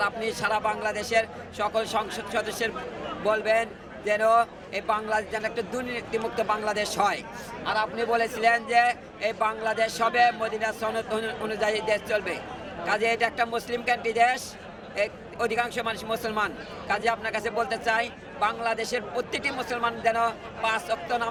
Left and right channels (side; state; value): both; identical; correlation 1.00